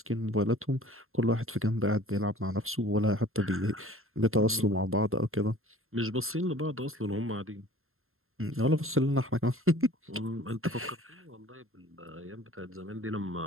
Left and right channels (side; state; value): left; late; 0.61 ms